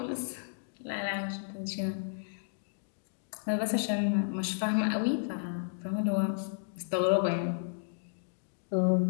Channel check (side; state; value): right; silent; digital silence